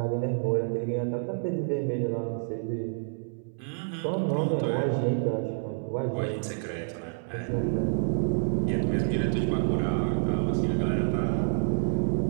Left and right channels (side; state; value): left; silent; digital silence